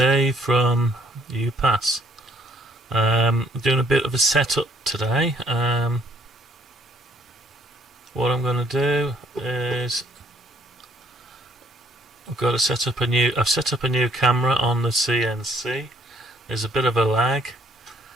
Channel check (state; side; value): normal; both; correlation 0.65